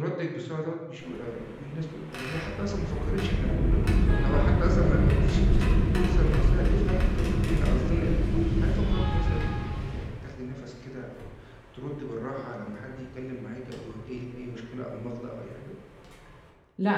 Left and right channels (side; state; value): both; identical; correlation 1.00